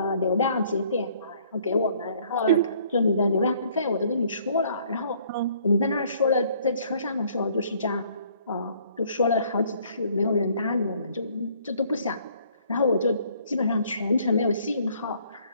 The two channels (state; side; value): inverted; both; correlation -0.61